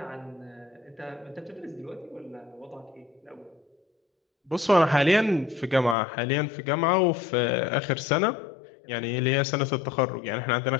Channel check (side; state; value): right; drops out; at 6.0 s